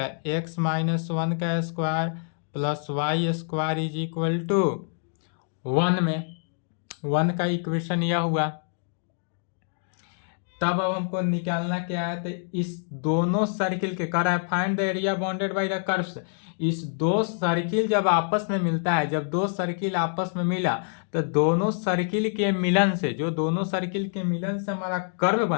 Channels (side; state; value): right; silent; digital silence